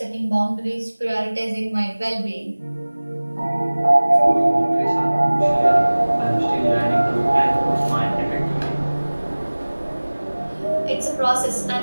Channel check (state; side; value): inverted; both; correlation -1.00